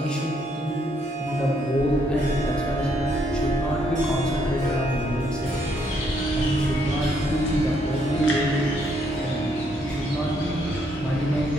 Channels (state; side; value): normal; both; correlation 0.72